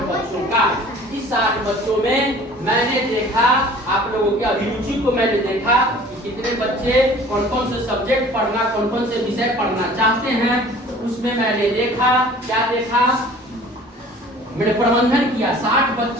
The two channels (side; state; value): both; normal; correlation 0.48